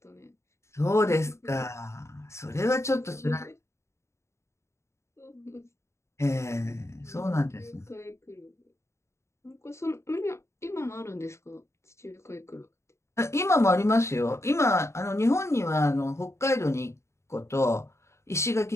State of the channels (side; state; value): right; late; 0.13 ms